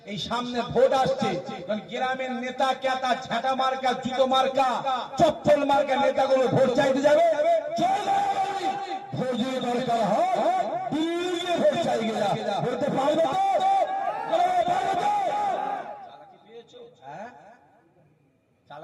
এই সামনে ভোট আসছে, গ্রামের নেতা ক্যাতা ঝাঁটা মার্কা, জুতো মার্কা, চপ্পল মার্কা নেতাগুলো ভোট চাইতে যাবে। ভোট যদি দরকার হয় দিল্লি ভোট চাই গেলা, ভোটতে পারবে তো? চালাকি পেয়েছো? হ্যাঁ,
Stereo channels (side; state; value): both; identical; correlation 1.00